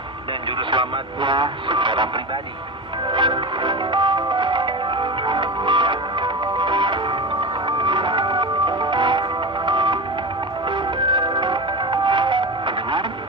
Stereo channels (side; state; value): both; normal; correlation 0.24